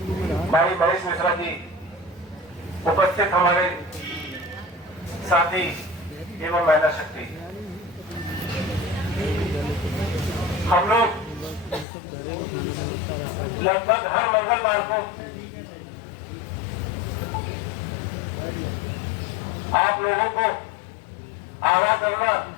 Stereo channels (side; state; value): right; drops out; at 11.9 s